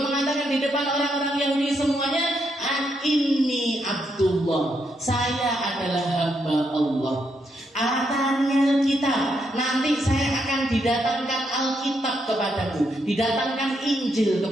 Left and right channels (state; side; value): normal; both; correlation 0.79